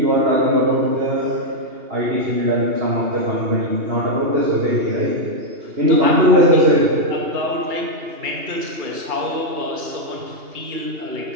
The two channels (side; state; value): left; late; 2.8 ms